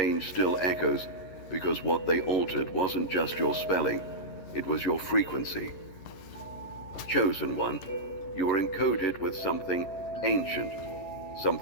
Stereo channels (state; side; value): late; right; 11 ms